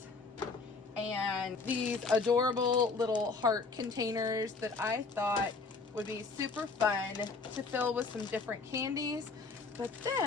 and these adorable little heart containers that I thought would be super fun to fill with some different candies. But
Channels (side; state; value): right; quieter; 4.2 dB